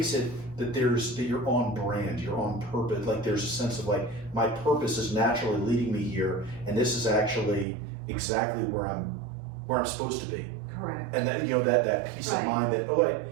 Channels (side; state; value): left; drops out; at 7.7 s